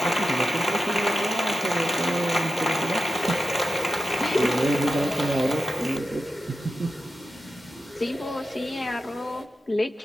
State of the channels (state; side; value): normal; both; correlation 0.91